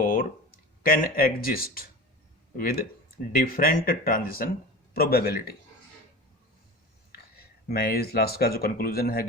can exist with different transition probability. मैं इस लास्ट का जो कंक्लूजन है,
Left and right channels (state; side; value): normal; both; correlation 0.32